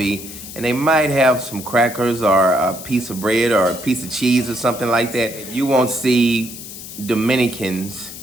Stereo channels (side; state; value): left; noise; hiss, 12 dB below the sound